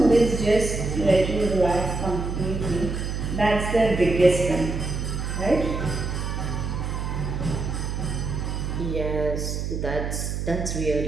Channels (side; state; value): right; noise; hum, 3 dB below the sound